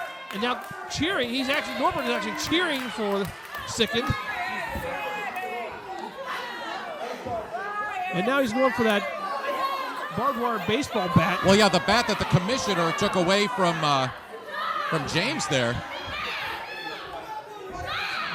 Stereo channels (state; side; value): identical; both; correlation 1.00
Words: And now cheering. Norbert is actually cheering for Sicend. And now he's going for that barbed wire baseball bat. Well, yeah, the bat that the commissioner took away from James there.